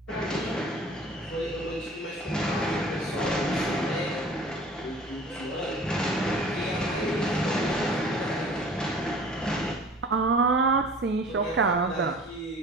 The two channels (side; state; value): both; normal; correlation 0.46